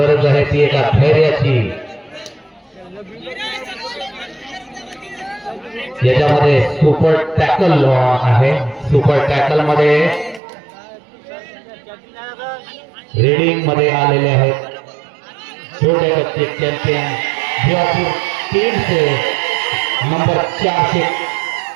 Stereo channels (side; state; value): left; drops out; at 10.4 s